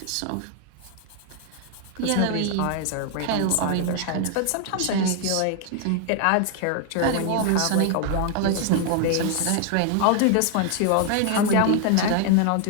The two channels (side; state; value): both; different; correlation 0.00